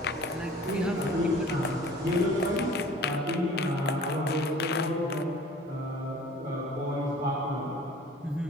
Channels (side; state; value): both; normal; correlation 0.47